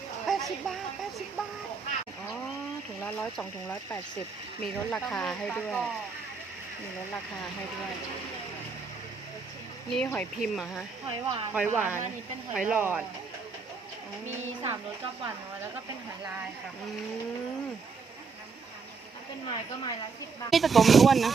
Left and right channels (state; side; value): quieter; left; 5.0 dB